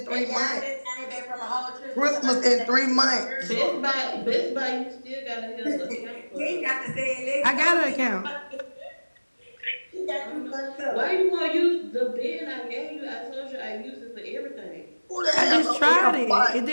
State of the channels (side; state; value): both; inverted; correlation -1.00